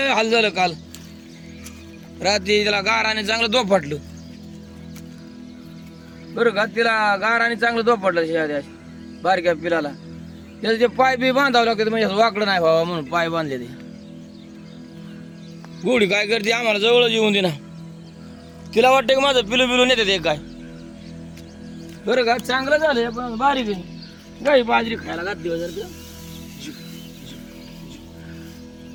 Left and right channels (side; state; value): both; identical; correlation 1.00